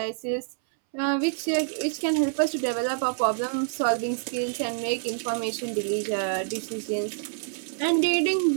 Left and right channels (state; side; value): silent; left; 60 dB below the other